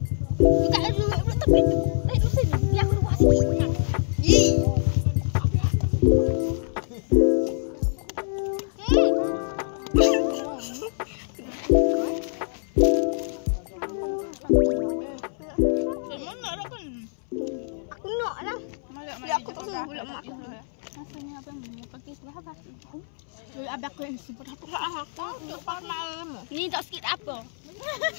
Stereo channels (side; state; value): right; silent; 61 dB below the other